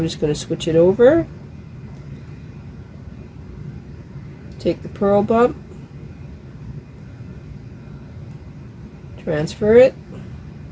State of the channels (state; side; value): identical; both; correlation 1.00